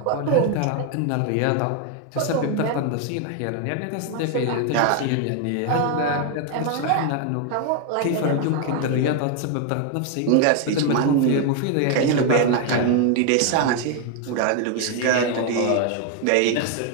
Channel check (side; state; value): both; different; correlation 0.01